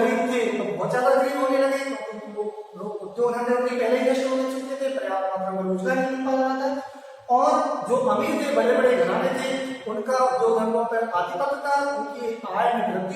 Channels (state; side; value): identical; both; correlation 1.00